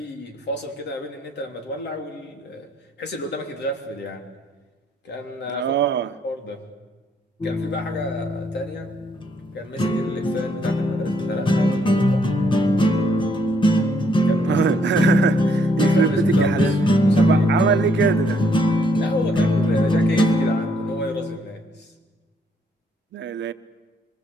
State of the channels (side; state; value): both; normal; correlation 0.70